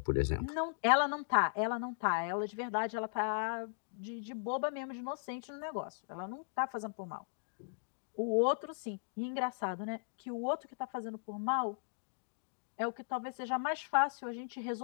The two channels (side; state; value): right; silent; digital silence